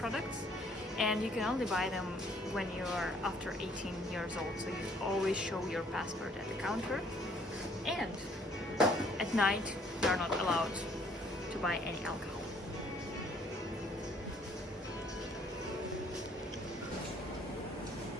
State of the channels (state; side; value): normal; both; correlation 0.62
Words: and you can only buy them when you're after 18 years old. So you always show your passport at the counter, and at night you're not allowed to buy any alcohol.